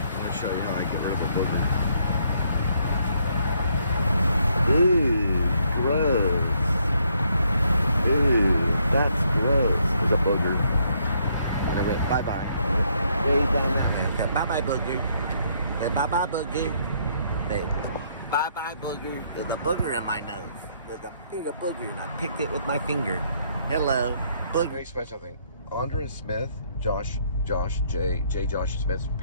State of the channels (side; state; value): both; inverted; correlation -0.71